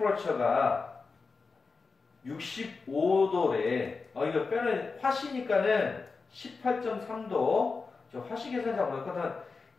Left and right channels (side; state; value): right; quieter; 4.4 dB